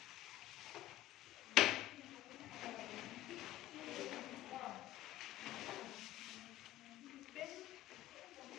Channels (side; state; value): right; quieter; 14.6 dB